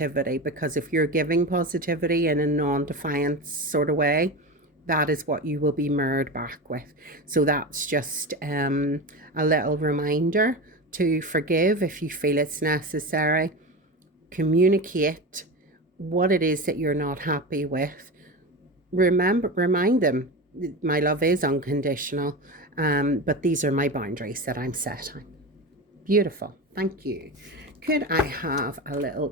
because if you're giving positivity in a non-defiant sort of way, that is what you will be mirrored back with. So that's just a little reminder to forgive if you feel it's necessary, communicate what it is that you're not happy with. Remind them, my love is unconditional, but these are my boundaries that I'm setting. Beautiful. Thank you. Could I have a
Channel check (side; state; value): both; normal; correlation 0.24